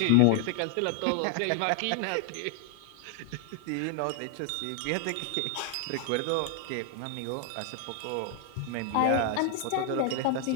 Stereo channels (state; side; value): different; both; correlation 0.00